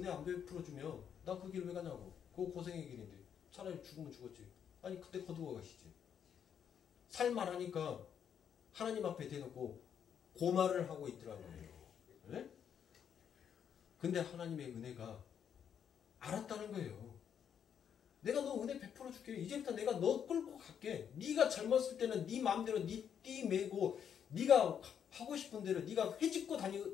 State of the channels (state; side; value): quieter; right; 8.3 dB